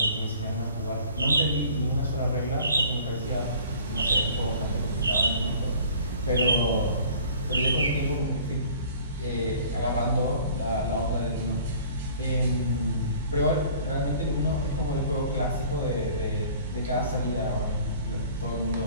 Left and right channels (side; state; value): both; inverted; correlation -0.49